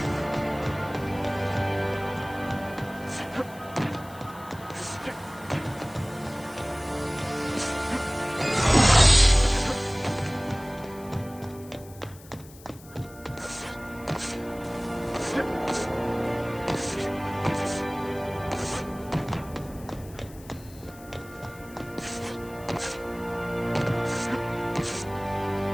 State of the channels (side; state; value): left; noise; hiss, 21 dB below the sound